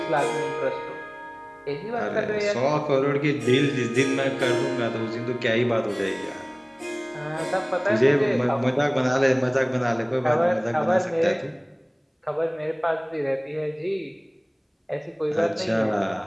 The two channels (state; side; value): identical; both; correlation 1.00